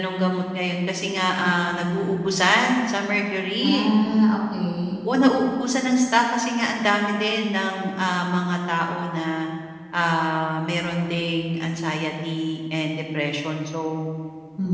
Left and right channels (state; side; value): identical; both; correlation 1.00